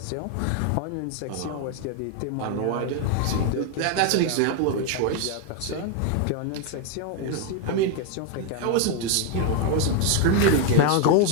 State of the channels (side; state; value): both; different; correlation 0.01